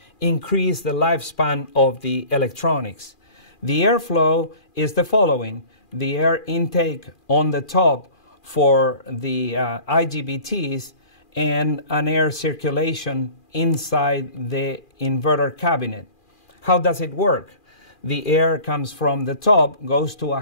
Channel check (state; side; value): late; right; 2.4 ms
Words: increase the lifespan of the electronics. The airflow is the following: the air intake on the top for the IGBTs and an air circulation inside the inverter cabinet. How does it work? The air comes from the top, goes to a